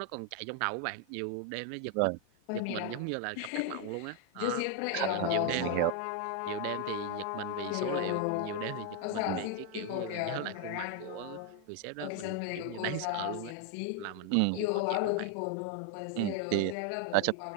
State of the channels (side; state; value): both; different; correlation 0.01